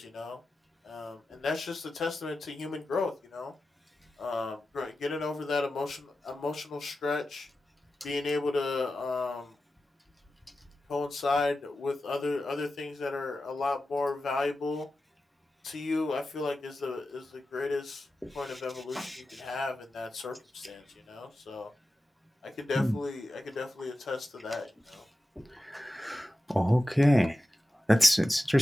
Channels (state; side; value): normal; both; correlation 0.93